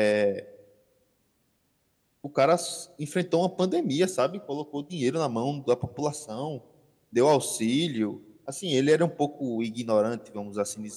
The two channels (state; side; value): identical; both; correlation 1.00